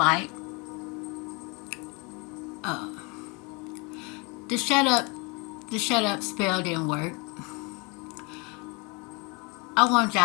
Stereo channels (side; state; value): right; quieter; 29.5 dB